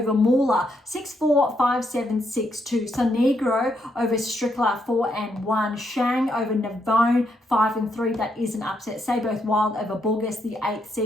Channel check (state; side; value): normal; both; correlation 0.77